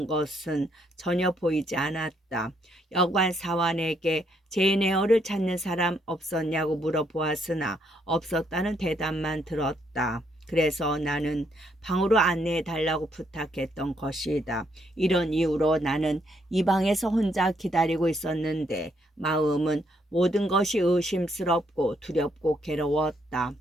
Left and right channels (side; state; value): both; normal; correlation 0.73